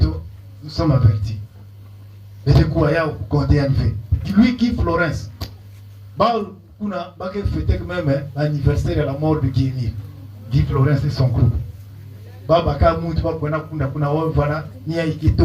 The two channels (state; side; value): identical; both; correlation 1.00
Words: nous sommes avertis. Et c'est quoi il compter à fait. Lui qui Florence. On a fêté même l'anniversaire de la mort de Guy Émile. Guy Florence et son groupe.